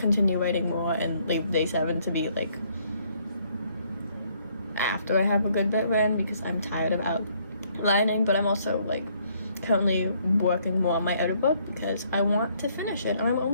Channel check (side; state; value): both; inverted; correlation -0.67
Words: writing more and leave day 7 to be like after I have a good bit written because I'm tired of outlining, but I'm also like currently working more on my other book because I want to finish it, and I'm